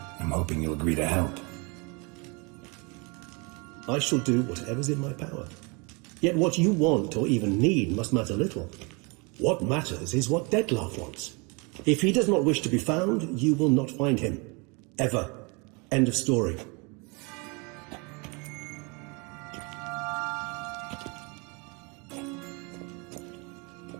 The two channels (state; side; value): quieter; left; 30.3 dB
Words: I'm hoping you'll agree to help. I shall do whatever's in my power. Yet what you want or even need must matter little. What matters is what Dettlaff wants. If he does not wish to be found, you will not find him. Ever. End of story.